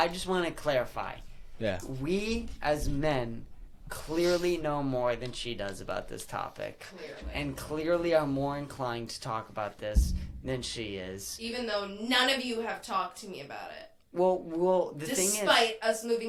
just want to clarify. Yeah. We as men clearly know more than she does about this topic, Clearly. and clearly are more inclined to talk about this than she is. Even though none of you have talked to me about it. Well, the thing is, Despite us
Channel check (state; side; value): identical; both; correlation 1.00